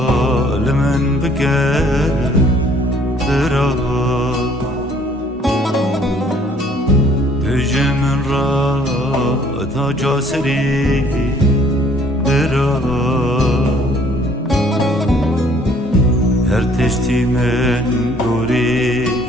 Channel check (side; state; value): both; normal; correlation 0.59